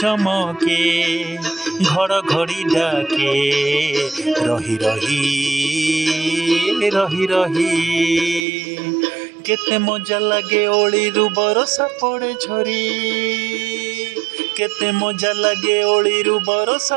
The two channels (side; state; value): left; drops out; at 8.5 s